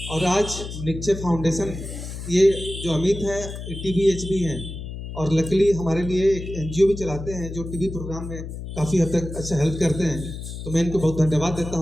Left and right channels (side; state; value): left; noise; hum, 9 dB below the sound